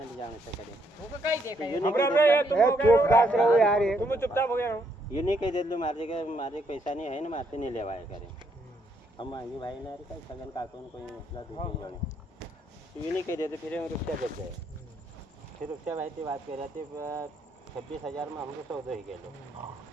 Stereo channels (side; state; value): both; normal; correlation 0.73